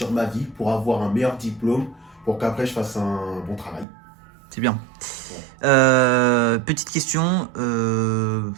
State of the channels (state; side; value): drops out; left; at 3.9 s